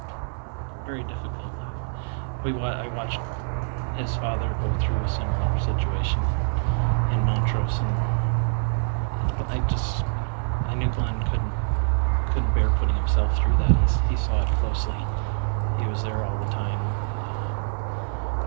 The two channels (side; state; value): left; silent; digital silence